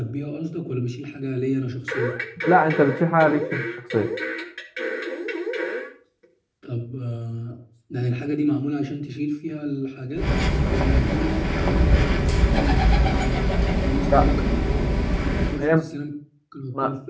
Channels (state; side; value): identical; both; correlation 1.00